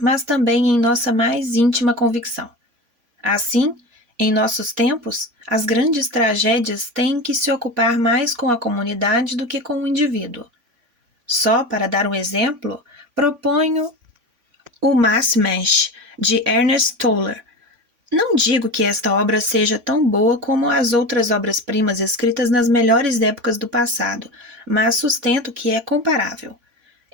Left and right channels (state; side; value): late; left; 3.5 ms